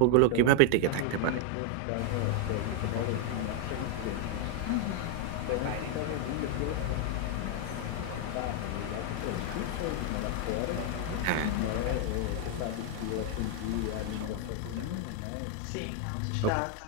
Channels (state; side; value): different; both; correlation 0.00